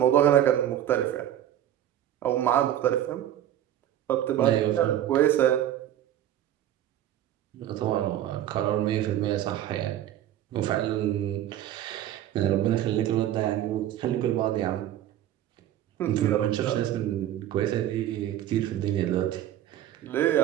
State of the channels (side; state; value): left; quieter; 12.0 dB